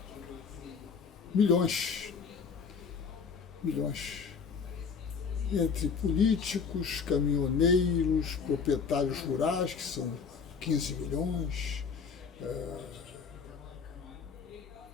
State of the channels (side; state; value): right; quieter; 5.8 dB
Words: Milhões. Milhões. Entre políticos, caminhoneiros, proprietários rurais, que são 15 milhões,